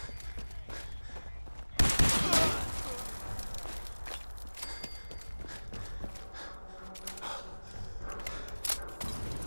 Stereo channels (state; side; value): inverted; both; correlation -1.00